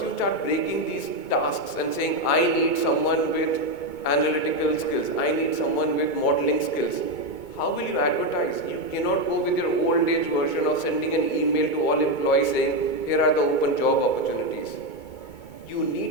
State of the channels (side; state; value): right; late; 2.2 ms